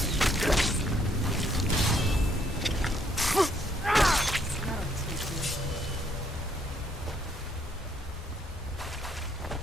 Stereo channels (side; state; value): both; normal; correlation 0.69